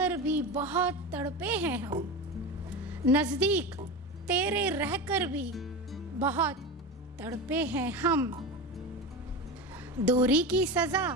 भी बहुत तड़पे हैं हम, नज़दीक तेरे रहकर भी बहुत तड़पे हैं हम। दूरी की सज़ा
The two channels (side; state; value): both; normal; correlation 0.24